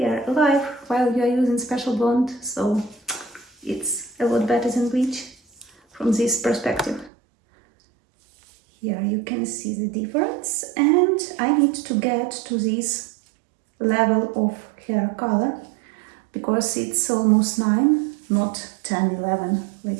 alive while you are using Special Blonde, so it's a lot better than bleach from this perspective. Here you can see the difference, and I need to get to this level of hair color because it's almost 9, not 10, 11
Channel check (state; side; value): drops out; left; at 7.1 s